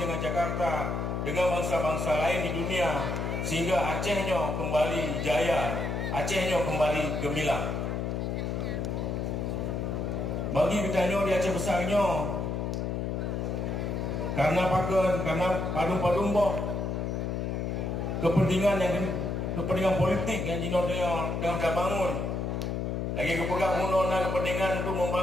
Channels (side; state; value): left; noise; hum, 1 dB below the sound